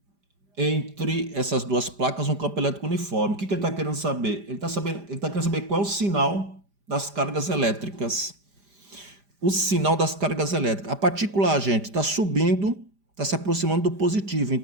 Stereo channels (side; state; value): left; late; 5.0 ms